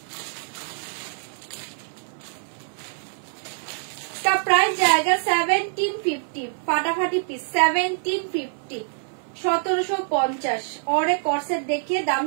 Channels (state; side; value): silent; left; 58 dB below the other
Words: इसका प्राइस जाएगा 1750। फाटाफाटी पीस 1750, 1750। और एक कॉर्सेट देखिए, दाम